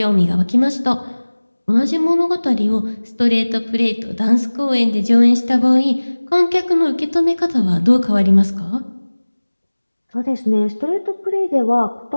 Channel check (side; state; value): both; inverted; correlation -1.00